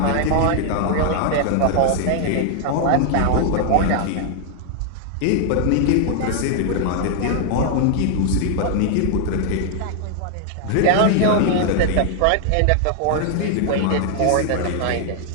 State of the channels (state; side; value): different; both; correlation 0.00